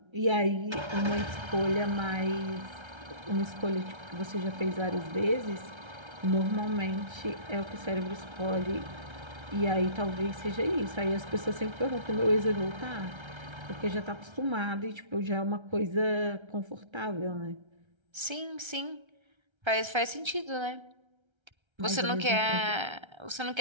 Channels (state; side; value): late; left; 1.3 ms